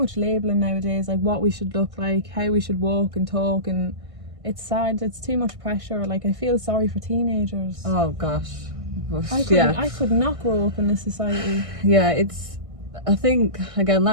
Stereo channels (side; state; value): left; late; 1.5 ms